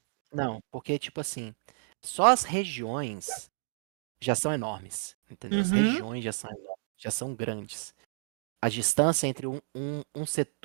Não, porque, tipo assim, só as regiões já são enormes, entendeu? As Uhum. regiões já são enormes, já são grandes. A distância entre um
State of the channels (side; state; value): left; silent; digital silence